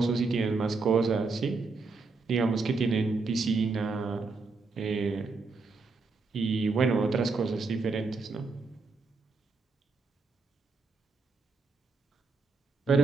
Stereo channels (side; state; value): left; quieter; 4.2 dB